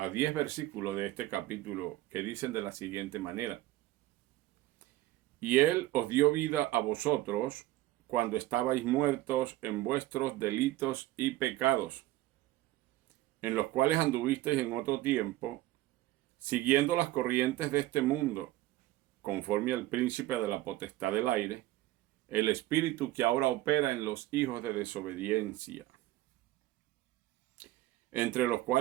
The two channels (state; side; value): quieter; left; 16.3 dB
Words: 10 versículos de este capítulo que dicen de la siguiente manera: Y él os dio vida a vosotros cuando estabais muertos en vuestros delitos y pecados, en los cuales anduvisteis en otro tiempo, siguiendo las corrientes de este mundo, conforme al príncipe de la potestad del aire, el espíritu que ahora opera en los hijos de desobediencia, entre los